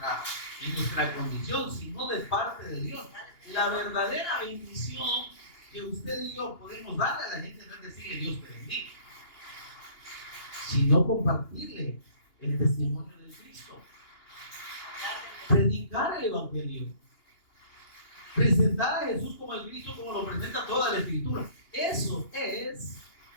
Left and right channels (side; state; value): right; late; 2.8 ms